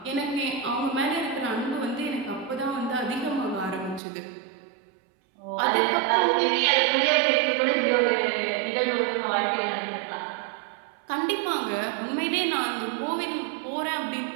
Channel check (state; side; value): drops out; left; at 4.0 s